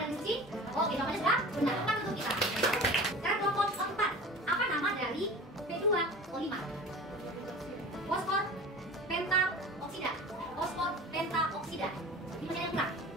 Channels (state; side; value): normal; both; correlation 0.37